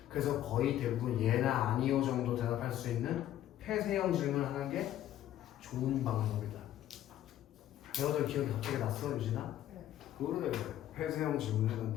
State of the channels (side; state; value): right; quieter; 12.4 dB